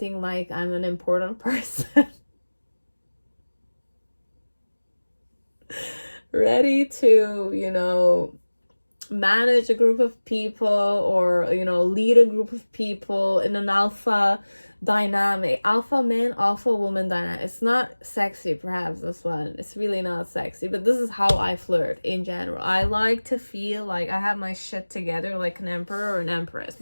like I'm an important person. Ready to, you know, manage a group of people or, you know, lead a group of people in an alpha dynamic, alpha man, alpha woman dynamic. It's not sexy, perhaps, this one. It's really not sexy, but this is how I flirt in general. I like to feel like I have my shit together like an emperor or an empress,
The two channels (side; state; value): both; inverted; correlation -1.00